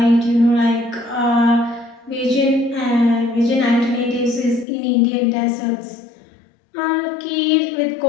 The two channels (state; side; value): drops out; right; at 4.7 s